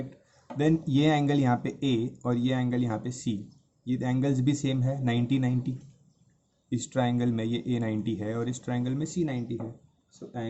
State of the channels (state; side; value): identical; both; correlation 1.00